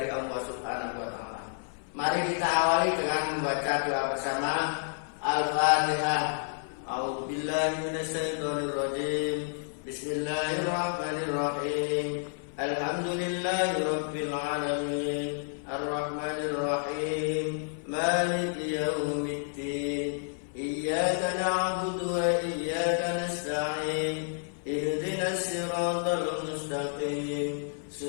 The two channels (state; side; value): silent; right; 58 dB below the other